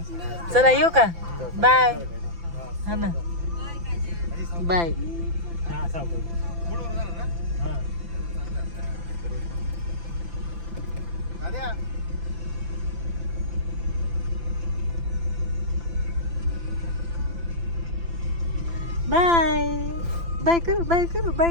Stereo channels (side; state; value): left; late; 5.9 ms